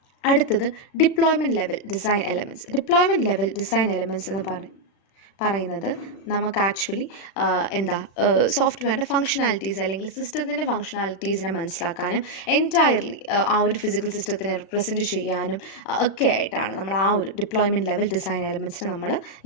അടുത്തത് deployment level design elements. Deployment level design elements എന്ന് പറയുന്നത് നമുക്ക് ആക്ച്വലി സോഫ്റ്റ്വെയറിൻ്റെ ഫങ്ഷനാലിറ്റീസ് അല്ലെങ്കിൽ സിസ്റ്റത്തിൻ്റെ ഫങ്ഷനാലിറ്റീസിനെ മനസ്സിലാക്കാനും എൻറ്റയർലി ആ ഒരു ഫിസിക്കൽ സിസ്റ്റത്തിനെ റിപ്രസെൻറ്റ് ചെയ്യാനും ഒക്കെ ആയിട്ടാണ് നമ്മൾ ആ ഒരു ഡിപ്ലോയ്മെൻറ്റ് ലെവൽ ഡിസൈൻ എലമെൻറ്റ്സിനെ നമ്മൾ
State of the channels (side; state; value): right; late; 36 ms